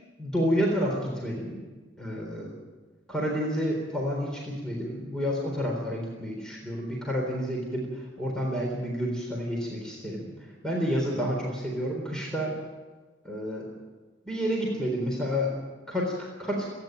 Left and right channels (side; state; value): both; normal; correlation 0.61